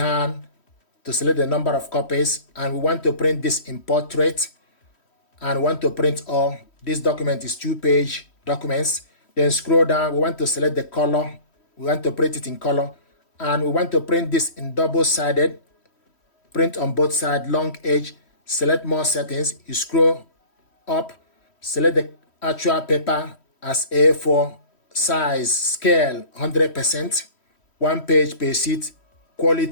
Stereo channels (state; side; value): late; right; 3.1 ms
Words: to select the number of copies. And we want to print this in portrait. And we want to print all. This document is 2-page documents. Then scroll down. We want to select the color. We want to print it in color. And we want to print this in double-sided. Print on both sides, long edge. Select more settings. You scroll up, select the actual paper as A4, size, scale 100%, 1 page per sheet,